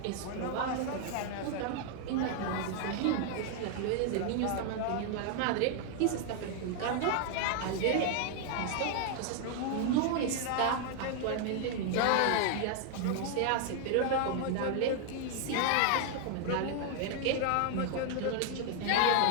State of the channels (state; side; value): different; both; correlation 0.00